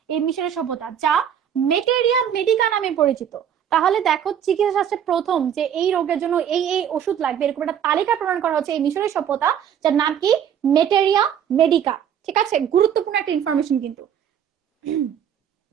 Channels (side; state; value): left; quieter; 9.1 dB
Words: এই মিশরের সভ্যতা, যা মেটেরিয়া মেডিকা নামে পরিচিত। তাহলে দেখো, চিকিৎসা শাস্ত্রে প্রথম যে এই রোগের জন্য এই এই ওষুধ লাগবে এরকম একটা তালিকা প্রণয়ন করা হচ্ছে এই মিশরের সভ্যতা, যার নাম কি? মেটেরিয়া মেডিকা, ঠিক আছে? গুরুত্বপূর্ণ একটা ইনফরমেশন কিন্তু।